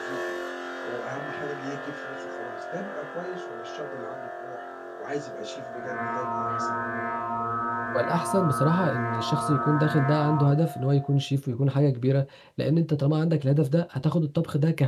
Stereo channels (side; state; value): both; identical; correlation 1.00